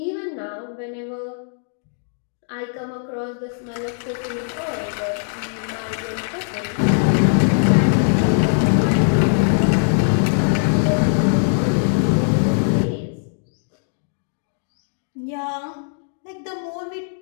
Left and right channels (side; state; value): right; silent; digital silence